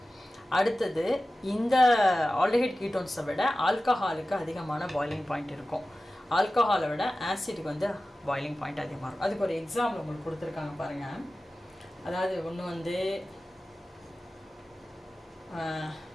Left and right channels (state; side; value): normal; both; correlation 0.95